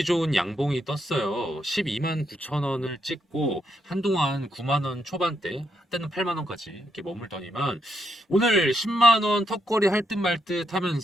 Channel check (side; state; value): both; normal; correlation 0.79